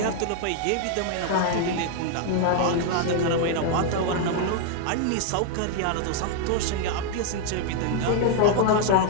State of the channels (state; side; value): different; both; correlation 0.00